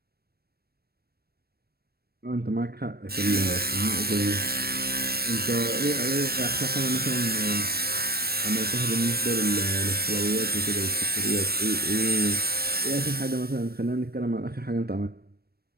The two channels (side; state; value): left; late; 0.46 ms